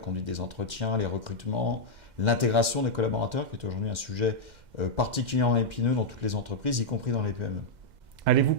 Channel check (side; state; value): left; late; 2.1 ms